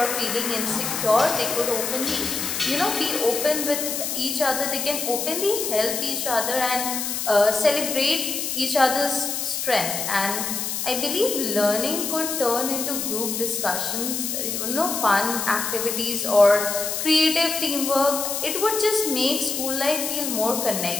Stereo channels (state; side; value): noise; left; hiss, 2 dB below the sound